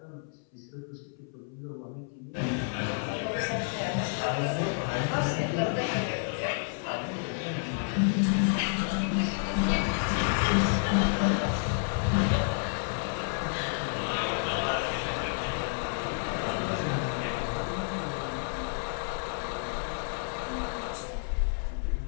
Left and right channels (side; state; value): right; silent; 58 dB below the other